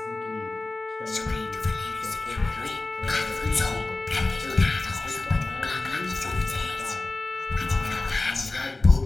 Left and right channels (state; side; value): quieter; right; 3.1 dB